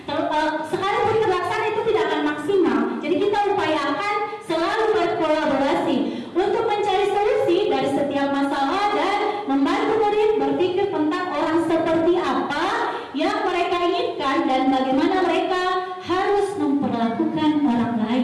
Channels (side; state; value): both; identical; correlation 1.00